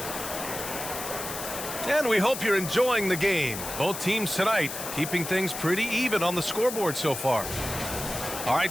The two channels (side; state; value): left; noise; hiss, 7 dB below the sound